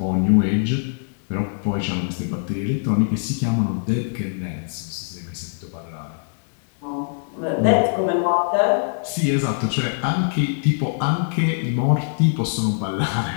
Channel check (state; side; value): silent; right; digital silence